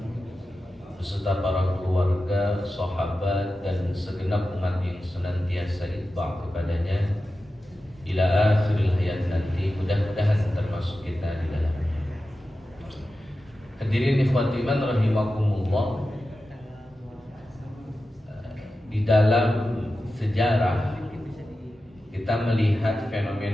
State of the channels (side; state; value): both; normal; correlation 0.93